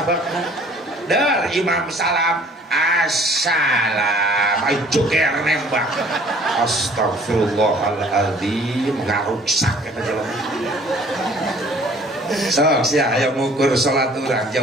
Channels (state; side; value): normal; both; correlation 0.54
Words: dar imam salam assalam ay joger nembak astagfirullahaladzim ngaruksak eta jelema sok sia aya ngukur salat urang